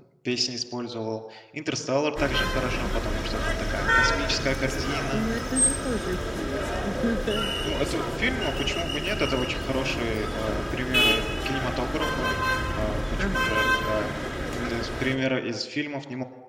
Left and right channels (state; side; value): identical; both; correlation 1.00